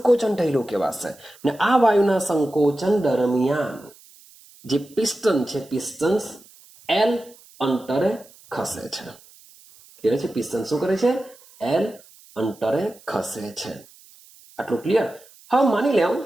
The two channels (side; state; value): right; noise; hiss, 25 dB below the sound